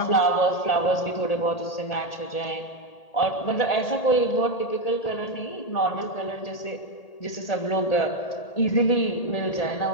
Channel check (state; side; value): late; right; 1.8 ms